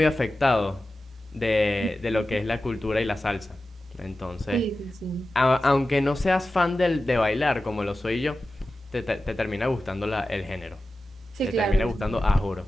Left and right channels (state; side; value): normal; both; correlation 0.94